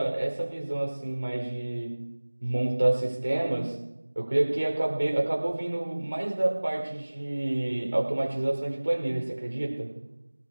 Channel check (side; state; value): both; inverted; correlation -1.00